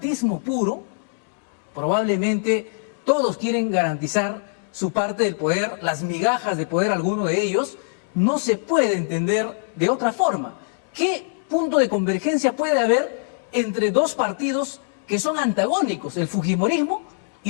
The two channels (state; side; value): silent; right; digital silence